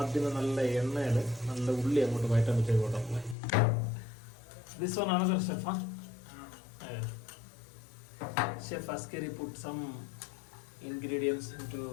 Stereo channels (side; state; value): right; drops out; at 3.4 s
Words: നല്ല എണ്ണയിൽ നല്ല ഉള്ളി അങ്ങോട്ട് വയറ്റാൻ വെച്ചേക്കോട്ടെ. ദിസ് വൺ ആണ് chef. Chef Askari put some ingredients into